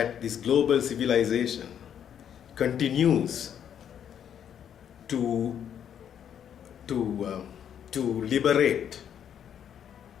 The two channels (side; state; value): right; quieter; 9.0 dB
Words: this global civilization continues to liberate